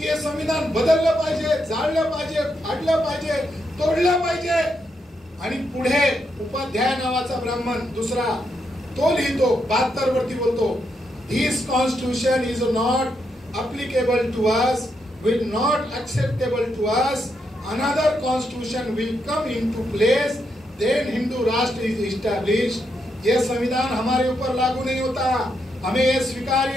हे संविधान बदललं पाहिजे, जाळलं पाहिजे, फाडलं पाहिजे, तोडलं पाहिजे. आणि पुढे उपाध्याय नावाचा ब्राह्मण दुसरा तो लिहितो 72 वरती बोलतो, this constitution is not applicable to us, will not acceptable to us, another constitution will come into place, then Hindu Rashtra is established. ये संविधान हमारे ऊपर लागू नहीं होता, हमें ये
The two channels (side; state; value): both; normal; correlation 0.81